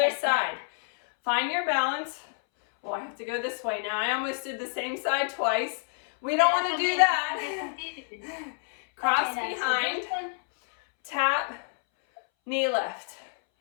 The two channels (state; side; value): silent; right; 59 dB below the other